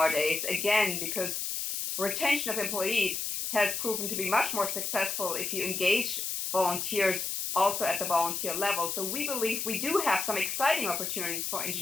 again, because retention of employees has proven to be much more successful if you engage volunteers also at the volunteer level. So we believe we do have some exciting opportunities for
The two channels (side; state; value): left; noise; hiss, 2 dB below the sound